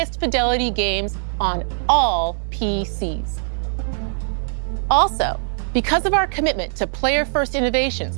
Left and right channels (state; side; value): silent; left; digital silence